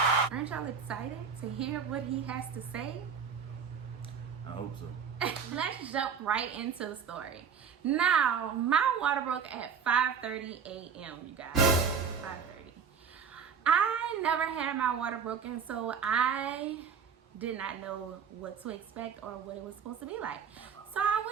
Aren't y'all excited to hear what he has to say? I hope so. Let's jump right into the story. Now, my water broke at 5:30 a.m., you guys. 5:30. I never had my water broken, so I did not know what to expect or what it was supposed to be like. So I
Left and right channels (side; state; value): left; quieter; 6.6 dB